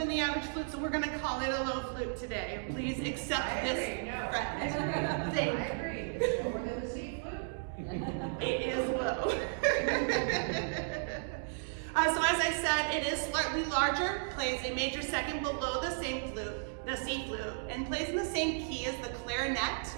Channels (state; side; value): silent; left; digital silence